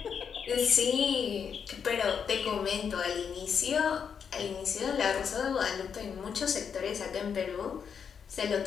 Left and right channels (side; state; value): right; quieter; 7.0 dB